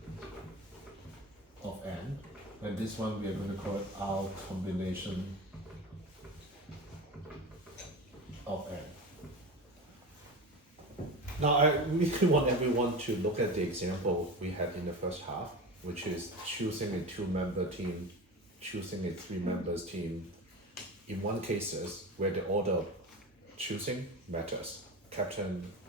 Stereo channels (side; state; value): both; normal; correlation 0.28